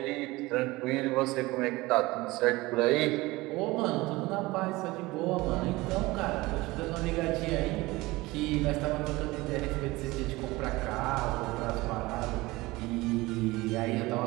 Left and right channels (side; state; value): left; quieter; 20.7 dB